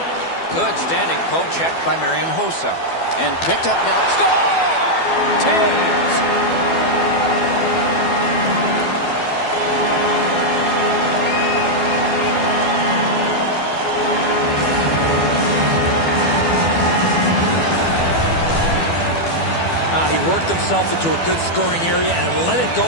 Good standing poke check by Marian Hossa. And picked up now. Score! Taves! He worked himself into a good scoring area and let it go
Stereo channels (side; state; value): right; late; 12 ms